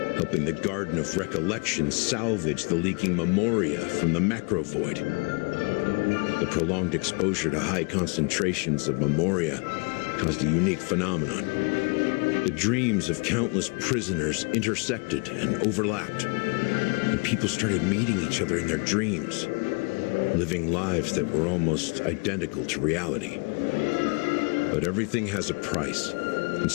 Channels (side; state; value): right; quieter; 33.1 dB